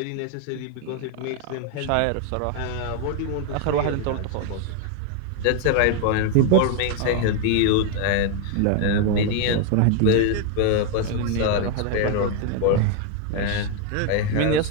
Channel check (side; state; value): both; different; correlation 0.00